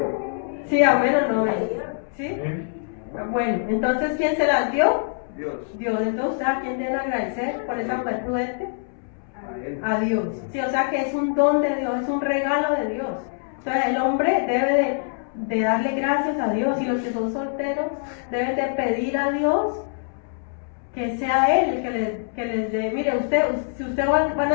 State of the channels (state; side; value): silent; right; 63 dB below the other